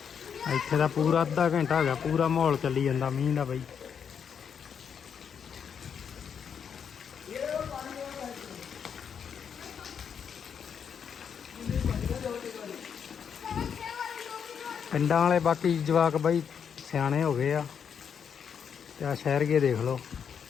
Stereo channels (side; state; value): right; quieter; 7.3 dB